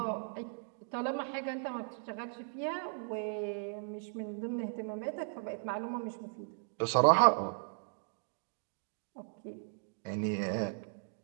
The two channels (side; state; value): left; silent; digital silence